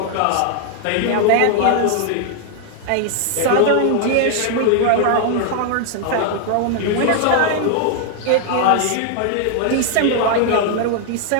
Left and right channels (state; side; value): different; both; correlation 0.00